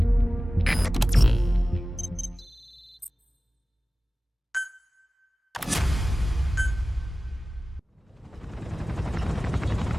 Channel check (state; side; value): normal; both; correlation 0.96